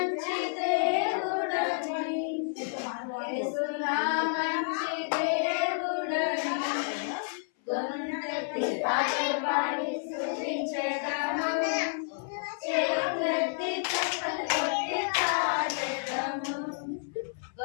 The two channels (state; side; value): silent; right; 58 dB below the other